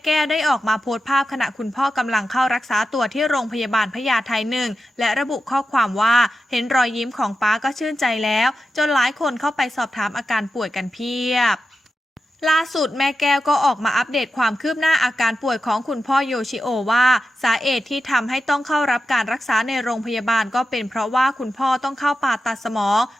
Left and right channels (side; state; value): both; normal; correlation 0.90